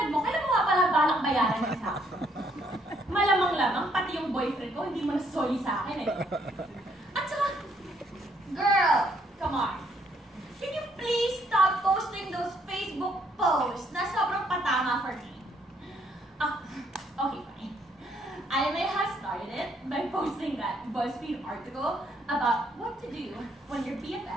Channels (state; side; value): normal; both; correlation 0.69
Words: mo, kailan mo nga pala balak bayaran sa akin? Malamang-lamang, pati yung boyfriend ko, hindi mo nasoli sa akin eh. At saka, girl, come on. Can you please stop posting those Facebook posts na sobrang patama for me? Okay, fine. I may have started it by posting that BuzzFeed article about what to do when your